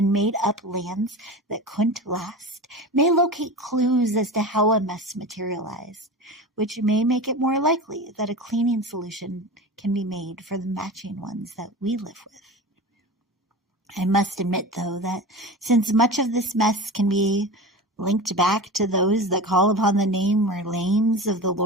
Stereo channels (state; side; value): normal; both; correlation 0.30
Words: made-up lands that couldn't last may locate clues as to how a mess materialized, which may make it more likely that a cleaning solution can be made for the matching ones that we live with. I must admit, though, that since much of this mess can be linked back to those that call upon the name or names of the